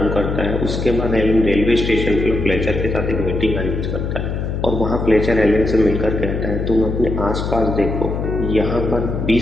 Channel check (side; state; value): left; noise; hum, 3 dB below the sound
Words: करता है। उसके बाद एलन रेलवे स्टेशन पर फ्लेचर के साथ एक मीटिंग अरेंज करता है और वहाँ फ्लेचर एलन से मिलकर कहता है तुम अपने आसपास देखो, यहाँ पर